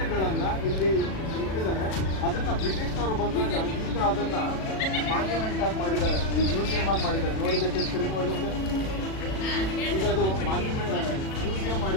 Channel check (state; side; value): late; right; 37 ms